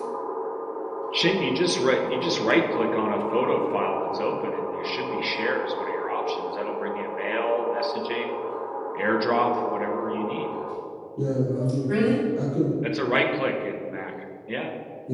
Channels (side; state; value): both; identical; correlation 1.00